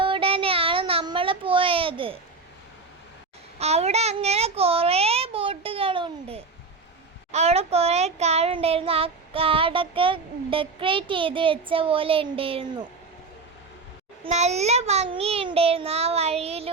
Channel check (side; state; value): left; quieter; 4.2 dB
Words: നമ്മൾ പോയത്. അവിടെ അങ്ങനെ കുറേ ബോട്ടുകളുണ്ട്. അവിടെ കുറേ കാടുണ്ടായിരുന്നു. ആ കാടൊക്കെ ഡെക്കറേറ്റ് ചെയ്ത് വെച്ച പോലെ ഉണ്ടായിരുന്നു. നല്ല ഭംഗിയുണ്ടായിരുന്നു ആ